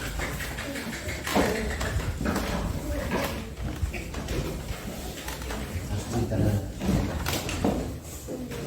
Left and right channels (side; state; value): both; identical; correlation 1.00